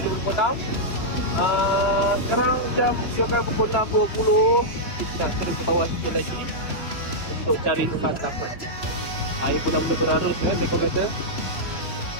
2026. Sekarang jam juga pukul 6.20. Kita nak terus ke bawah sikit lagi untuk cari santapan. Air pun dah mula berarus mereka kata.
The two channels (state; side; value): late; right; 3.0 ms